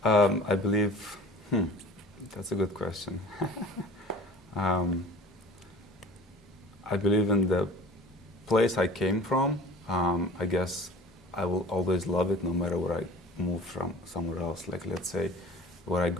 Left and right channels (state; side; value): normal; both; correlation 0.43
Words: I believe, that's a good question. I believe in the place I came from. I guess I will always love it no matter where I move from somewhere else. Like, let's say, where I